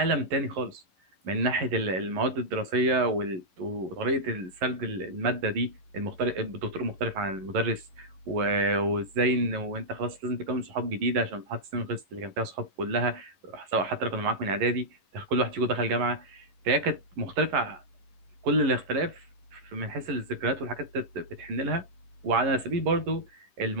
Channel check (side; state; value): left; late; 11 ms